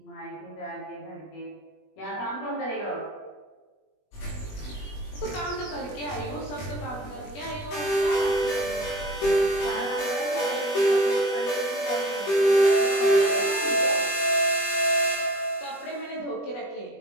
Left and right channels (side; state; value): right; late; 20 ms